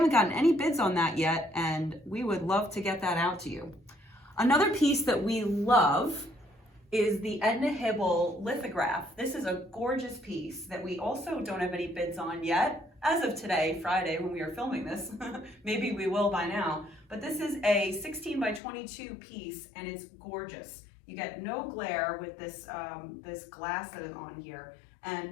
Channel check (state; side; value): drops out; right; at 18.6 s